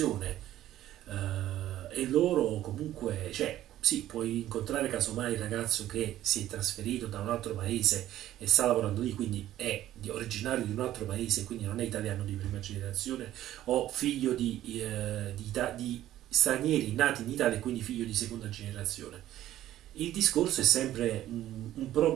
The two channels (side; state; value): left; quieter; 13.3 dB